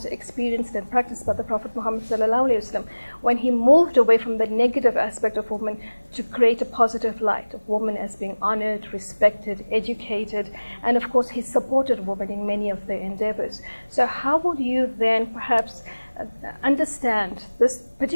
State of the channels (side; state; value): both; inverted; correlation -1.00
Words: experienced and practiced by the Prophet Muhammad ﷺ when he moved away from the negative aspect of women to create a positive light of women as being honored, respected, educated, and, of course, he supported women in many of their endeavors. So how would you then perhaps understand this